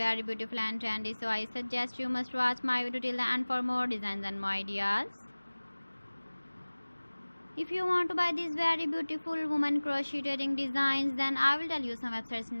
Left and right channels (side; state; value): both; inverted; correlation -1.00